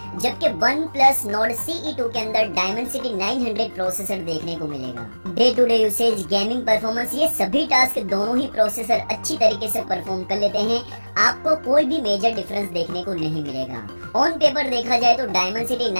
जबकि OnePlus Nord CE2 के अंदर Dimensity 900 प्रोसेसर देखने को मिलेगा। Day to day usage, gaming performance, ये सभी टास्क दोनों ही प्रोसेसर अच्छी तरीके से परफॉर्म कर लेते हैं। आपको कोई भी मेजर डिफरेंस देखने को नहीं मिलेगा। ऑन पेपर देखा जाए तो Dimensity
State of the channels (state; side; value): inverted; both; correlation -1.00